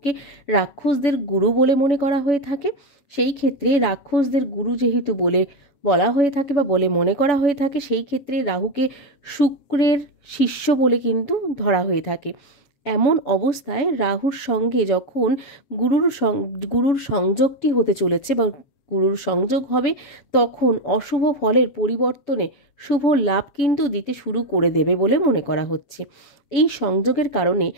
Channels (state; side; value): late; right; 7.0 ms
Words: রাক্ষসদের গুরু বলে মনে করা হয়ে থাকে, সেই ক্ষেত্রে রাক্ষসদের গুরু যেহেতু বলে বলা হয়ে থাকে বা বলে মনে করা হয়ে থাকে, সেই ক্ষেত্রে রাহুকে শুক্রের শিষ্য বলে কিন্তু ধরা হয়ে থাকে। এমন অবস্থায় রাহুর সঙ্গে যখন গুরুর সংযোগটি হতে চলেছে বা গুরুর সংযোগ হবে, তখন অশুভ ফলের পরিবর্তনে শুভ লাভ কিন্তু দিতে শুরু করে দেবে বলে মনে করা হচ্ছে। এই সংযোগের কারণে